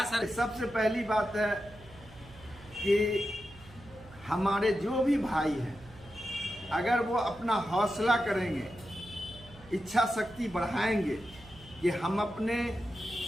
सर? सबसे पहली बात है कि हमारे जो भी भाई हैं, अगर वो अपना हौसला करेंगे, इच्छा शक्ति बढ़ाएंगे कि हम अपने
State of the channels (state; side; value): noise; right; hum, 21 dB below the sound